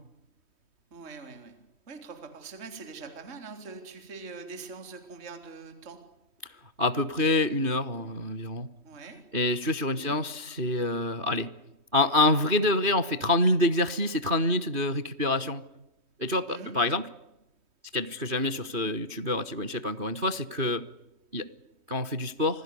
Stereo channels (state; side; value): late; left; 3.2 ms